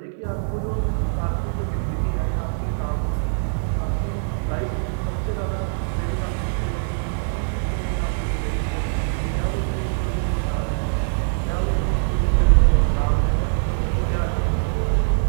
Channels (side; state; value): left; silent; digital silence